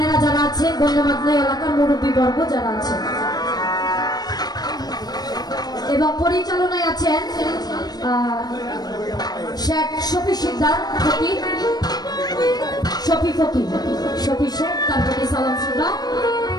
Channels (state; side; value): late; right; 0.19 ms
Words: যারা আছে, গণ্যমান্য এলাকার মুরব্বী বর্গ যারা আছে, এবং পরিচালনায় আছেন শেখ শফি শিকদার ফকির, শফি ফকির, শফি শেখ, তার প্রতি সালাম শ্রদ্ধা,